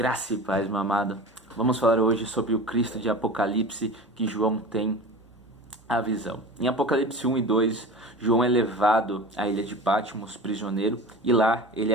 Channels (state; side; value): normal; both; correlation 0.34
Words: e paz, meu amado. Vamos falar hoje sobre o Cristo de Apocalipse que João tem a visão. Em Apocalipse 1 e 2, João é levado à ilha de Patmos, prisioneiro, e lá ele